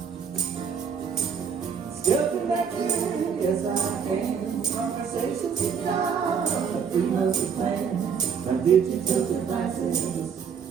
Still connected yes I am. Conversations with God on the 3 months plan. Now digital devices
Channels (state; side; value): quieter; left; 6.7 dB